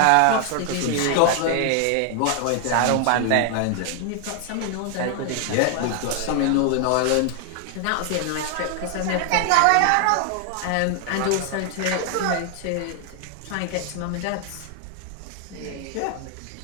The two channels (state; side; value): different; both; correlation 0.00